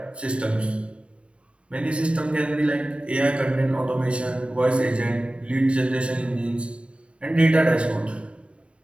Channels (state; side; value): late; left; 0.059 ms